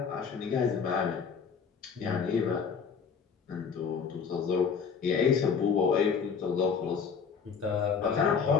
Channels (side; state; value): right; quieter; 6.2 dB